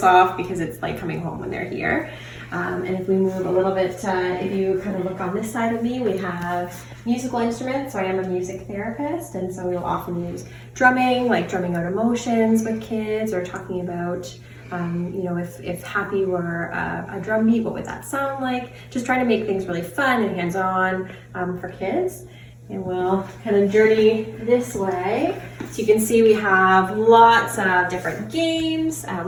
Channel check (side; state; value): both; identical; correlation 1.00